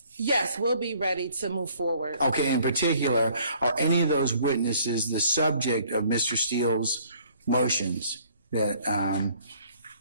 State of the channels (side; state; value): both; inverted; correlation -0.59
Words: Yes, we'll be ready to move forward. Okay, in particular, are any of those witnesses the subject of Mr. Steele's motions that